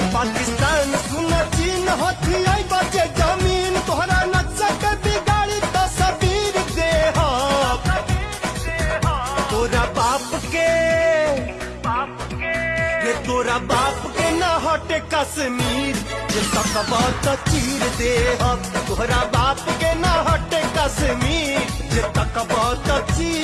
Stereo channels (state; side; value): identical; both; correlation 1.00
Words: पाकिस्तान सुन चीन हथियाई बचे जमीन तोहरा नक्शा के बिगाड़ी तस्वीर दे तोरा बाप के रे तोरा बाप के न हटे कश्मीर जे तकबा त चीर दे तोहरा बाप के न हटे कश्मीर जे तकबा त